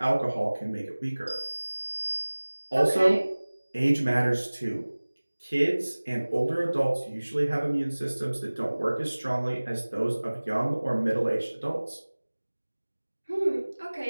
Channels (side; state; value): both; inverted; correlation -1.00